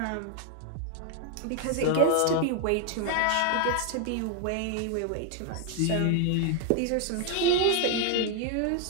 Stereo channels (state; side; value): different; both; correlation 0.00